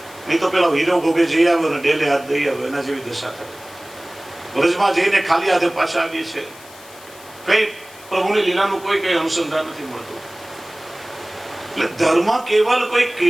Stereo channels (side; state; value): left; noise; hiss, 21 dB below the sound